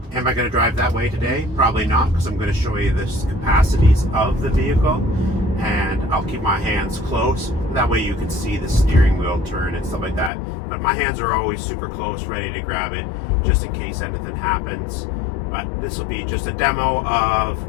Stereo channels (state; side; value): drops out; right; at 10.3 s